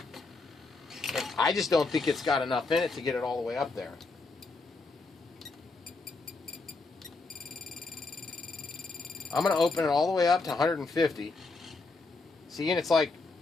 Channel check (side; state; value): right; quieter; 3.6 dB